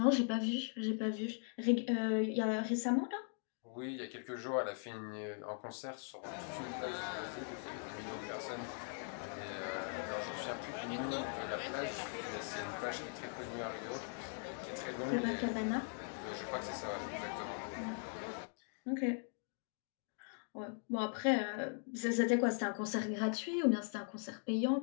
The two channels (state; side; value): silent; right; 51 dB below the other